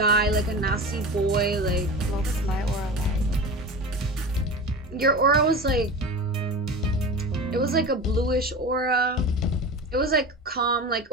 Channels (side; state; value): both; normal; correlation 0.30